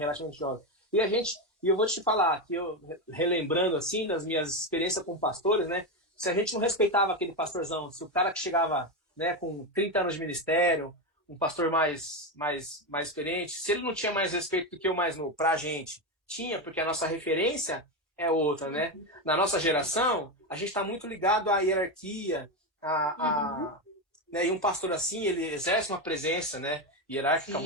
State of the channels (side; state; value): both; normal; correlation 0.12